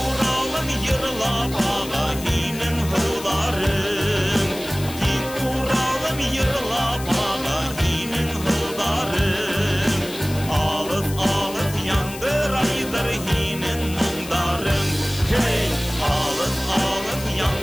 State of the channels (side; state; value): left; noise; hiss, 13 dB below the sound